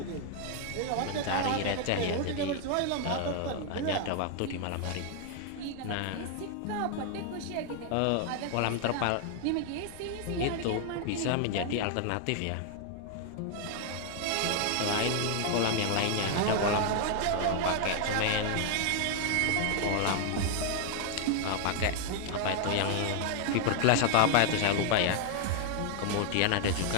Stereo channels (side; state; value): both; different; correlation 0.00